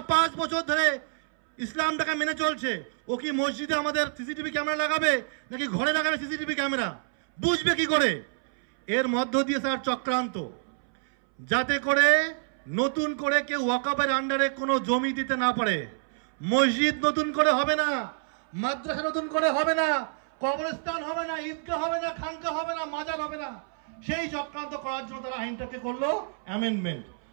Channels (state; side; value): silent; left; 60 dB below the other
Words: 5 বছর ধরে ইসলামটাকে মেনে চলছে। ও কি মসজিদে আমাদের সিসিটিভি ক্যামেরা লাগাবে নাকি ঘরে লাগাবে সিসিটিভি ক্যামেরা? বুঝবে কি করে? এর মধ্য দিয়ে স্যার চক্রান্ত, যাতে করে নতুন করে কেউ ওয়াকফের আন্ডারে কোনো জমি দিতে না পারে। মসজিদ নতুন করে হবে না, মাদ্রাসা নতুন করে হবে না, কবরস্থান হবে না, ঈদগাহ হবে না, খানকা হবে না, মাজার হবে না। সেই চক্রান্ত করার জন্য তারা আইনটাকে করলো অ্যামেন্ডমেন্ট।